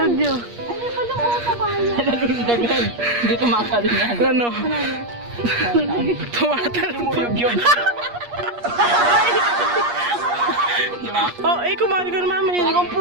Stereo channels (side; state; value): left; late; 8.5 ms